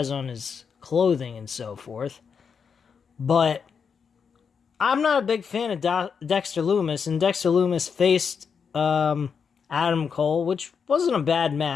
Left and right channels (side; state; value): right; quieter; 6.3 dB